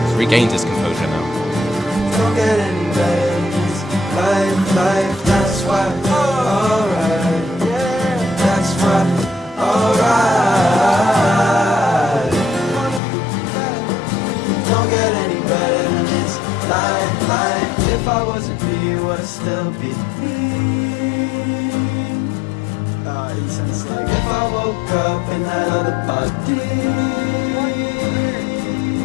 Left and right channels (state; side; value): drops out; right; at 13.0 s